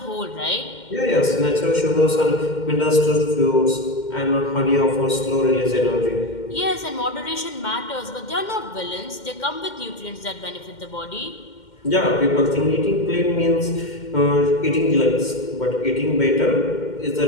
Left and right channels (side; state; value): right; late; 2.1 ms